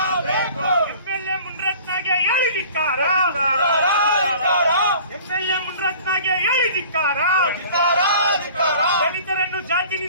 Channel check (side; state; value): both; inverted; correlation -0.46